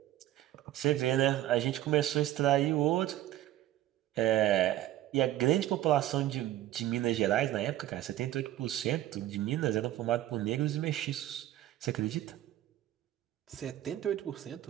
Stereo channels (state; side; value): quieter; left; 13.8 dB